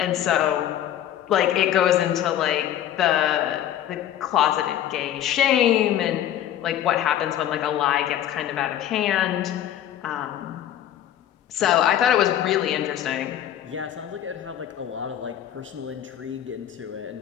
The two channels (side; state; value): right; quieter; 11.2 dB